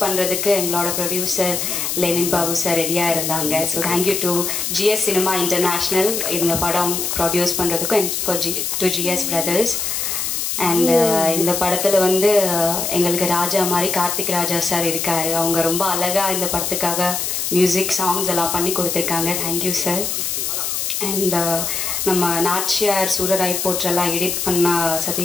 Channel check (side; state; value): left; noise; hiss, 1 dB below the sound